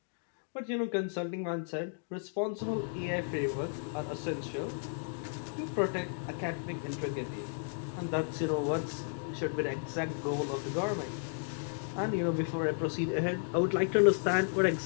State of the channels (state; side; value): silent; right; digital silence